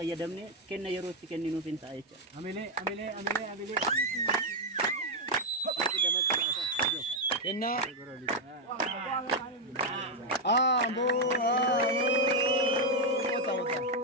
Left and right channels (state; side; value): normal; both; correlation 0.02